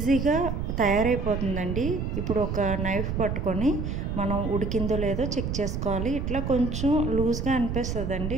తయారైపోతుందండి. ఇప్పుడు ఒక నైఫ్ పట్టుకొని మనం ఉడికిందో లేదో చెక్ చేసుకోవాలి. ఇట్లా కొంచెం లూజ్గా అనిపిస్తుందండి,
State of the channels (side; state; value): right; noise; rumble, 3 dB below the sound